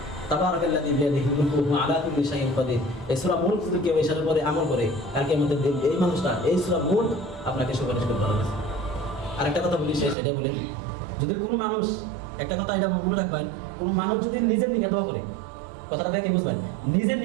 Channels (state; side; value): drops out; left; at 10.2 s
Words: তাবারাকাল্লাযী বিয়াদিহি মুলকু ওয়া আলা কুল্লি শাইইন কাদির। এই সূরা মুলক যদি কেউ এই সালের পরে আমল করে কালকে মধ্যে দিন এই মানুষটা এই সূরা মুলক আপনাকে সুপারিশ করতে পারবে। আর একটা কথা বলি, সেটা বলে, যদি কোনো মানুষ, একটা কথা এটা মনে রাখবেন, কোনো মানুষ যদি নিজের দিকে দোয়া করে, কথাটা দেখে বুঝবেন, নিজের